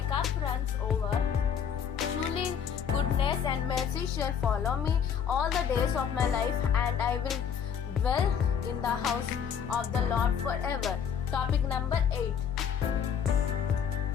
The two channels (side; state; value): right; quieter; 7.8 dB